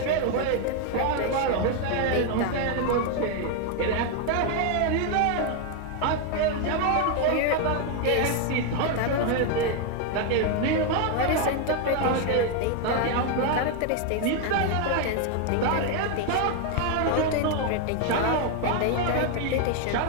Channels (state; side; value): different; both; correlation 0.01